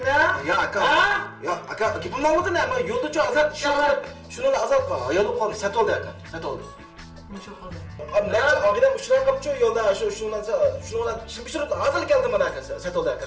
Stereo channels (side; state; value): both; identical; correlation 1.00